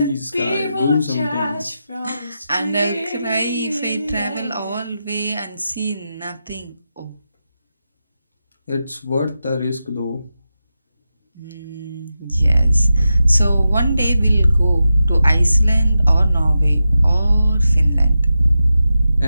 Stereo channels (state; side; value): inverted; both; correlation -0.90